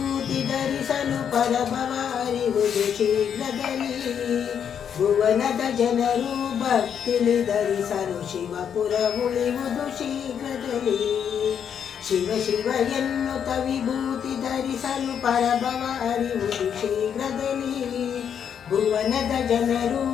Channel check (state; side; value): quieter; right; 8.1 dB